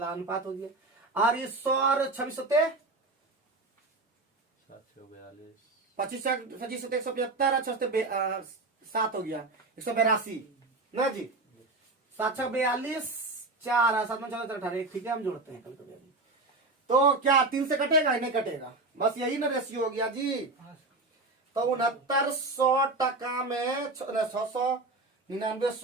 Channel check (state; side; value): quieter; left; 3.2 dB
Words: हो गया। और ये 100 और 26 25 25 175 और 7 हो गया 182 ना जी। 7 42 4 7 14 18। ठीक है, हम जोड़ते हैं कल कभी। तो क्या 3 से कटेगा? नहीं कटेगा, बस यही ना रेशियो हो गया जी। तो 6900 टका में 699